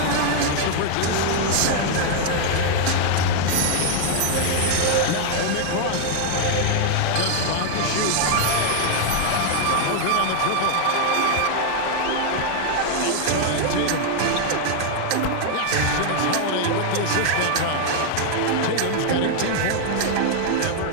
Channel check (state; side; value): different; both; correlation 0.00